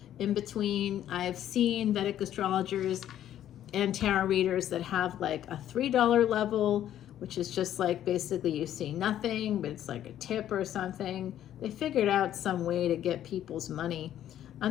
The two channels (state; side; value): quieter; right; 11.4 dB